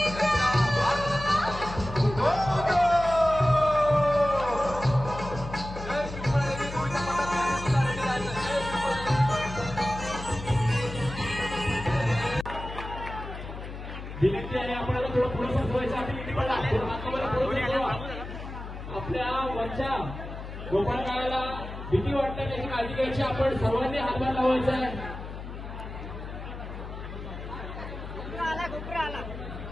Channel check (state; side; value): noise; left; hum, 10 dB below the sound